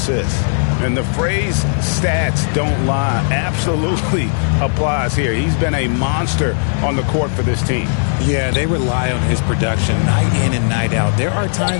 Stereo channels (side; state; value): right; silent; digital silence